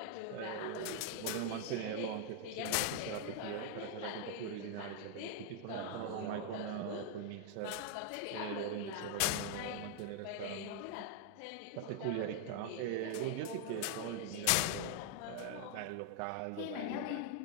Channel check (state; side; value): different; both; correlation 0.00